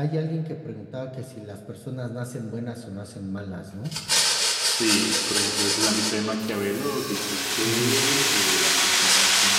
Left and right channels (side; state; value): both; identical; correlation 1.00